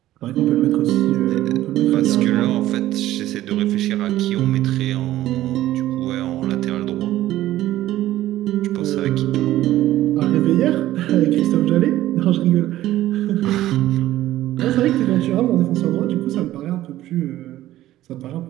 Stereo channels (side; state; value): left; quieter; 14.5 dB